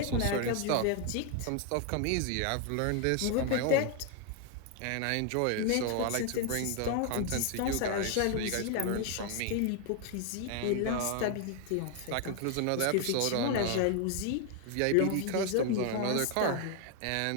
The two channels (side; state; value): both; different; correlation 0.01